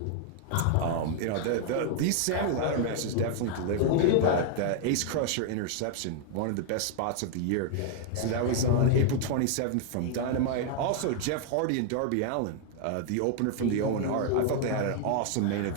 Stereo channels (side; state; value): both; different; correlation 0.00